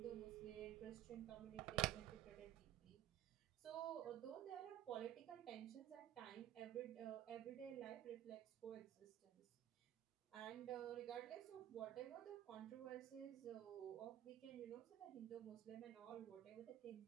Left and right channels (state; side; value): quieter; left; 12.1 dB